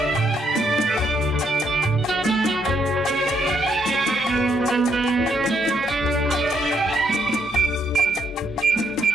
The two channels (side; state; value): both; normal; correlation 0.74